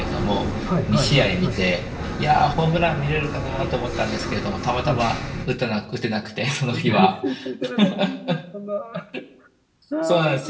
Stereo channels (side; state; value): both; identical; correlation 1.00